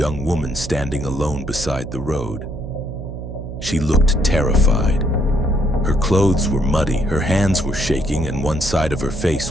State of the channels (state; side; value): noise; right; hum, 9 dB below the sound